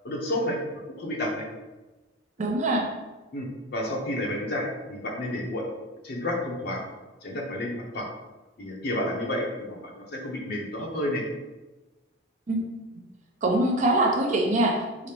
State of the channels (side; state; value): both; normal; correlation 0.23